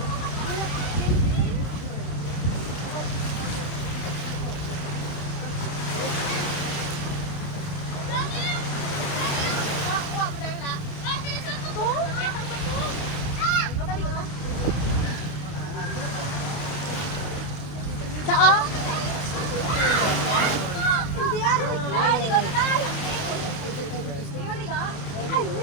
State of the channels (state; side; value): late; right; 29 ms